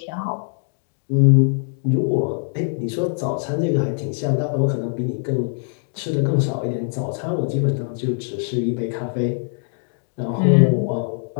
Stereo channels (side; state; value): right; silent; digital silence